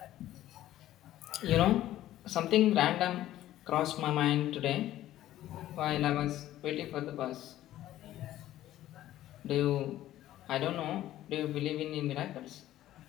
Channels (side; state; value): right; quieter; 13.8 dB